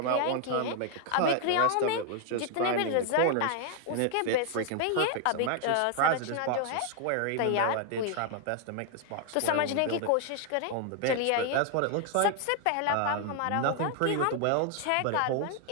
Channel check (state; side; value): different; both; correlation 0.00